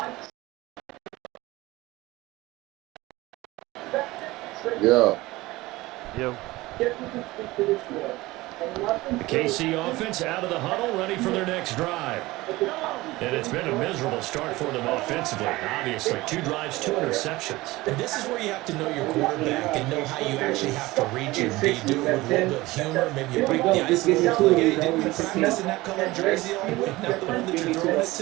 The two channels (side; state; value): left; quieter; 19.7 dB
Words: Yeah. Yo. The KC offense out of the huddle, ready for their next drive. And it's been a miserable start for them offensively. Obviously, 2 drives, 2 interceptions. And this is where you have to know your quarterback and know how you actually have to reach him. Do you do it with a little bit of humor? Maybe you break the ice a little bit. Like, hey, didn't you practice in that color jersey all week? Not the one that you're throwing it